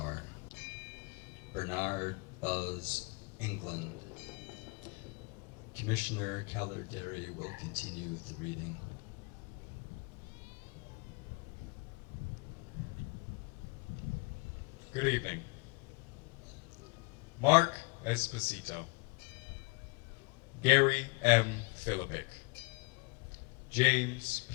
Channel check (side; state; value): right; quieter; 30.8 dB